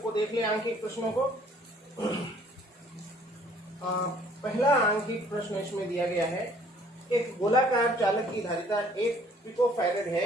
को देख लें आंकिक प्रश्नों को। पहला आंकिक प्रश्न इसमें दिया गया है, एक गोलाकार चालक की धारिता 1 पिकोफैरेड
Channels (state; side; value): normal; both; correlation 0.58